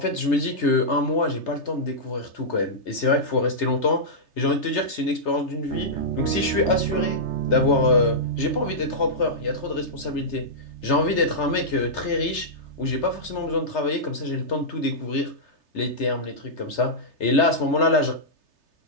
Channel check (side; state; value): right; late; 3.3 ms